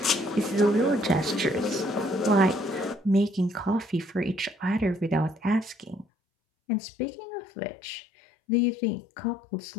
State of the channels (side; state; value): right; drops out; at 6.1 s